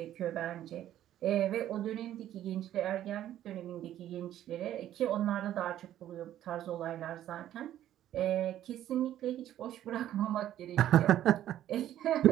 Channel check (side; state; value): left; quieter; 12.1 dB